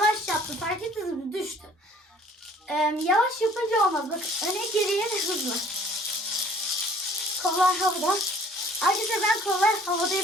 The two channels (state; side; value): normal; both; correlation 0.55